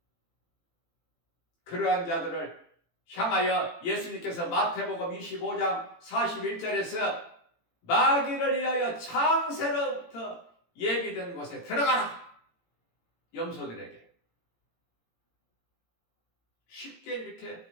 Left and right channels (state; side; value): late; right; 18 ms